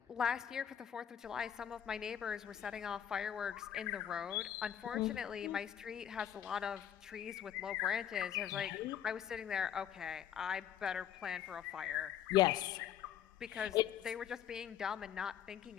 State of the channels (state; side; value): quieter; right; 9.7 dB